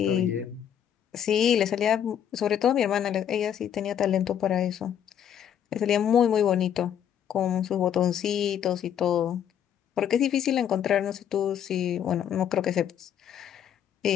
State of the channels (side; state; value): right; quieter; 9.4 dB